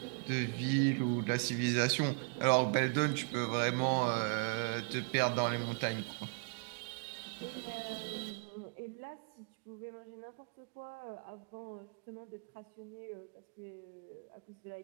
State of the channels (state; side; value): quieter; left; 39.7 dB